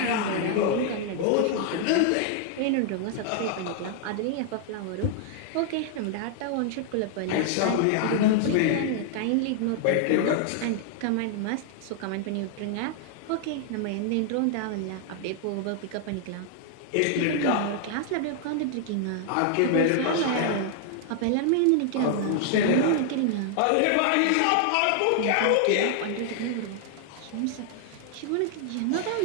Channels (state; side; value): different; both; correlation 0.00